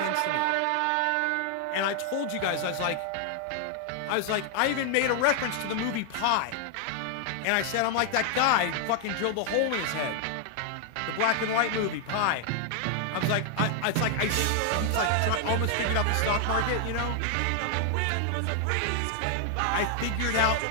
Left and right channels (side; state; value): both; different; correlation 0.00